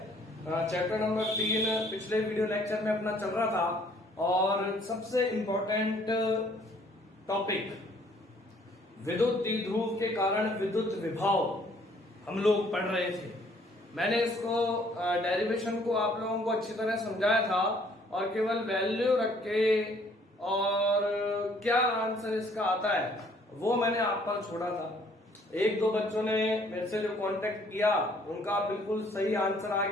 चैप्टर नंबर 3 पिछले वीडियो लेक्चर में अपना चल रहा था और सबसे इम्पोर्टेंट टॉपिक विद्युत द्विध्रुव के कारण विद्युत विभव हम लोग पढ़ रहे थे। मैंने इसको डेरिवेशन को आप लोगों को अच्छी तरह समझाया था और केवल वैल्यू रख के और क्या आंसर इसका आता है वो मैंने आप पर छोड़ा था। एक दो बच्चों ने मेरे से जो कांटेक्ट किया उनका बिल्कुल सही आंसर आ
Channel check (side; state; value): both; normal; correlation 0.61